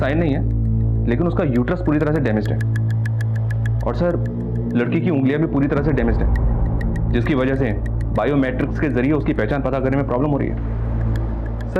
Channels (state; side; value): identical; both; correlation 1.00